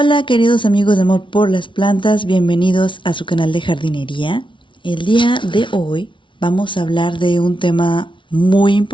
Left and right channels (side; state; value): right; late; 0.24 ms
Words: queridos amigos de Amor por las Plantas, bienvenidos a su canal de jardinería. El día de hoy vamos a hablar de un tema muy